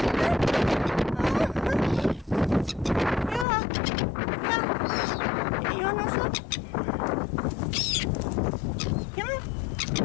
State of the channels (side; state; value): right; drops out; at 3.5 s